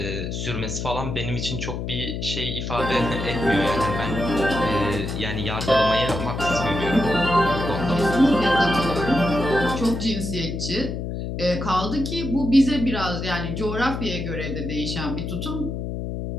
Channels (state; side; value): noise; left; hum, 4 dB below the sound